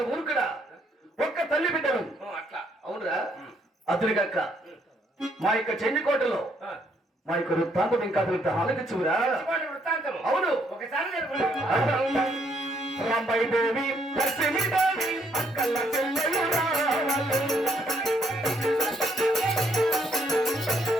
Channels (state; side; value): normal; both; correlation 0.70